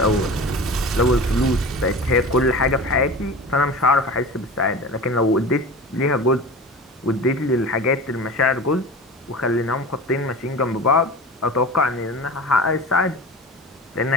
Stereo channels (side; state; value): both; normal; correlation 0.34